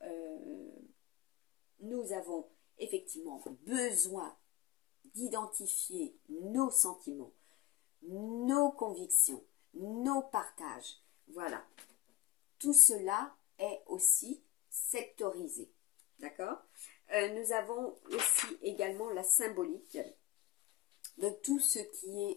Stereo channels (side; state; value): right; quieter; 13.4 dB